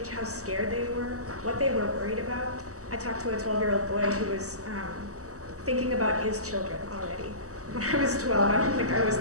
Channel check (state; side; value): late; left; 0.66 ms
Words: how scared they were, what they were worried about. I talked to a 12-year-old boy who was thinking about his children already. When I was 12, I don't think I was